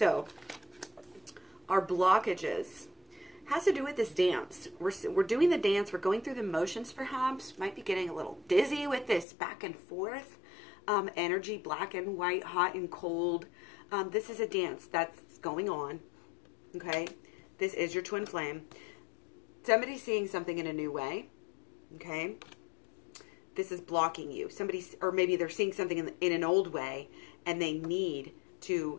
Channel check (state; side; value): drops out; right; at 9.2 s